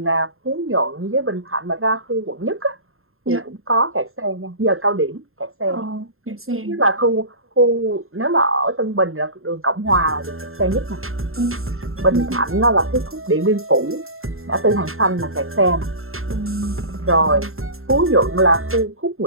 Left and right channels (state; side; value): late; left; 0.61 ms